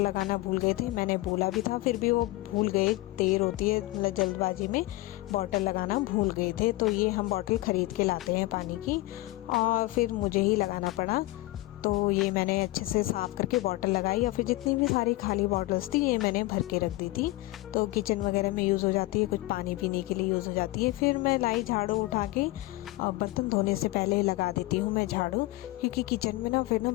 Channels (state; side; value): quieter; right; 19.1 dB